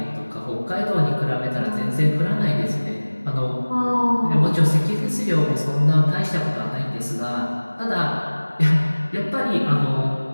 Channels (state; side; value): inverted; both; correlation -1.00